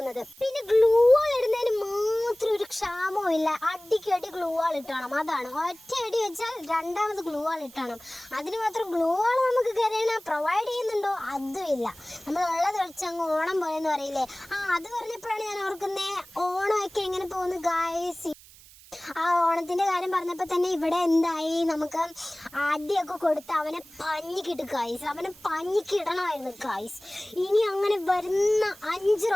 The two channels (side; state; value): right; noise; hiss, 22 dB below the sound